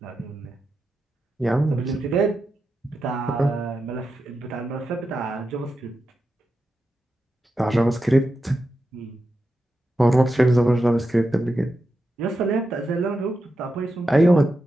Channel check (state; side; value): normal; both; correlation 0.88